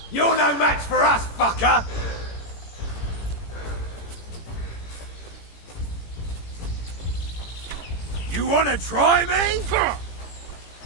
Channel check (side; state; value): right; late; 18 ms